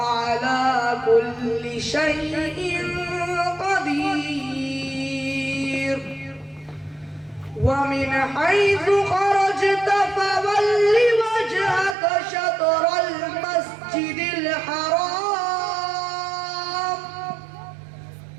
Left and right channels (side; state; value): left; drops out; at 12.0 s